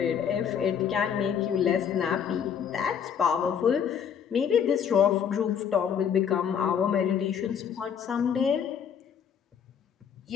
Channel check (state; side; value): quieter; right; 7.9 dB